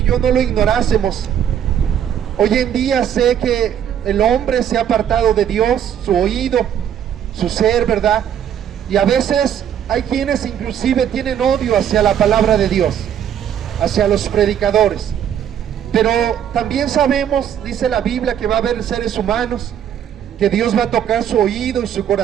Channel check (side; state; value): left; quieter; 9.4 dB